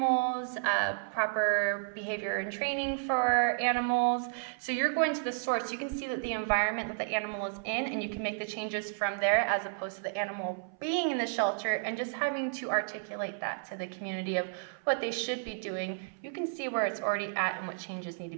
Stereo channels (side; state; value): left; silent; 56 dB below the other